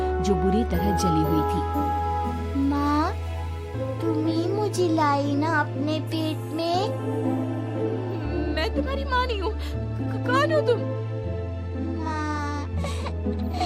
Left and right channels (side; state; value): both; identical; correlation 1.00